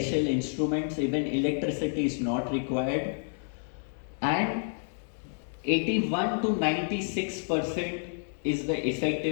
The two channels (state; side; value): silent; right; 58 dB below the other